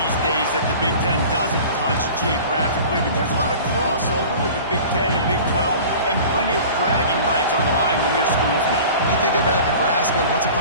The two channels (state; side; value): inverted; both; correlation -0.41